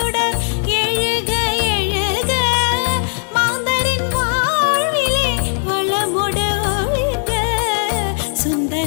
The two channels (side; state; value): right; silent; digital silence